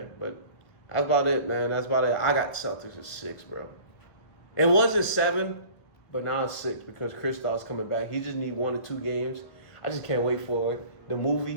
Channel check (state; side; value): late; right; 1.4 ms